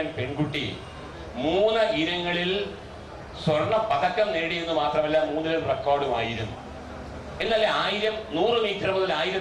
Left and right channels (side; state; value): both; identical; correlation 1.00